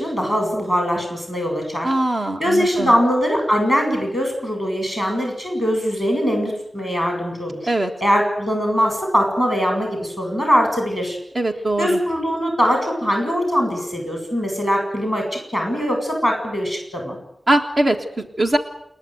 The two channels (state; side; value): normal; both; correlation 0.92